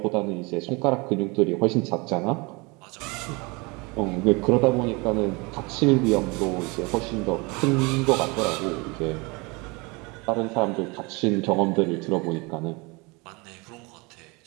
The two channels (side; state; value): left; quieter; 27.0 dB